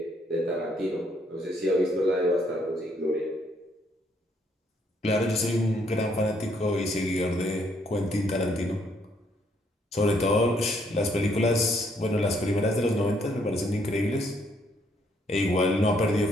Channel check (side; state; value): both; normal; correlation 0.70